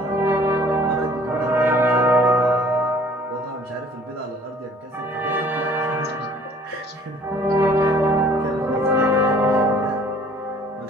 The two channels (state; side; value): normal; both; correlation 0.54